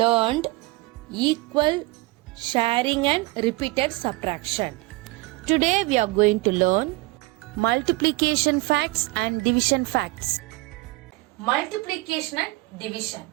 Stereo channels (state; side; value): quieter; left; 22.4 dB